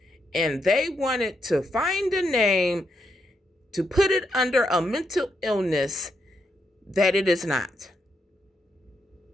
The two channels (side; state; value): both; normal; correlation 0.80